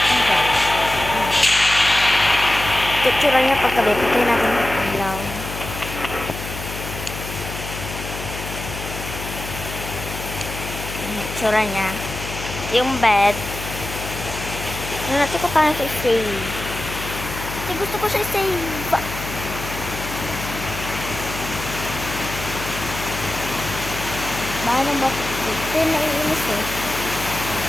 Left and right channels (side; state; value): left; noise; hum, 8 dB below the sound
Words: Itsura niya paggabi. Pagkain natin yung ilaw. Itsura niya. Yung bed. Ano natin ko paano siya i-save. Kasi gusto ko siya i-save. Paano ba? Ito yung naiinis eh.